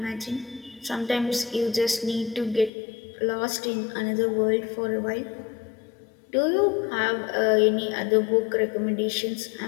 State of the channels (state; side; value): drops out; right; at 2.7 s